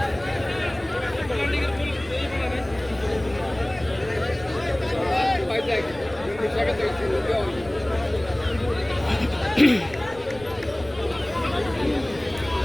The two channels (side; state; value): left; noise; rumble, 20 dB below the sound